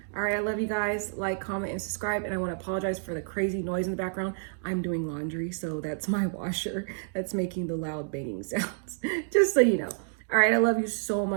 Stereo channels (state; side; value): silent; left; digital silence